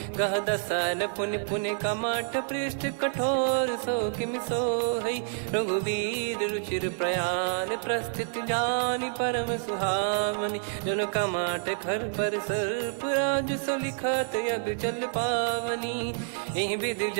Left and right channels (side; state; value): left; silent; digital silence